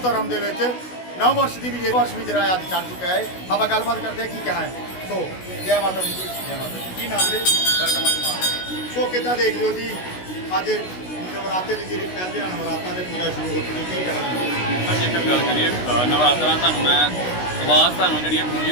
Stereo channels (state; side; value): late; right; 16 ms